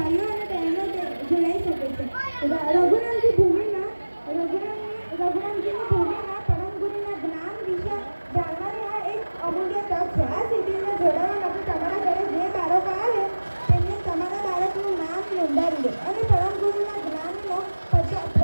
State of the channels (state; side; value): inverted; both; correlation -1.00